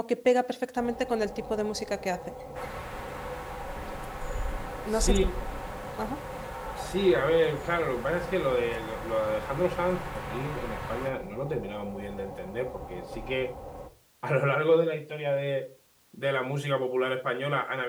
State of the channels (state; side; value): identical; both; correlation 1.00